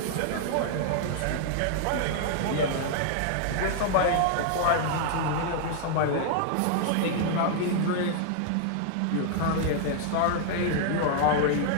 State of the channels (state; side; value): different; both; correlation -0.01